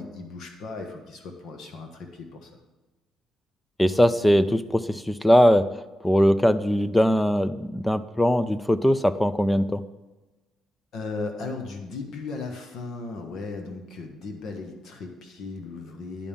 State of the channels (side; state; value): both; normal; correlation 0.95